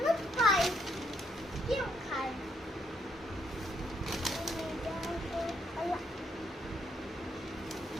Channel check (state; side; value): normal; both; correlation 0.75